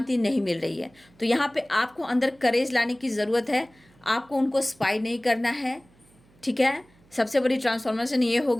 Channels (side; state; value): right; noise; hum, 30 dB below the sound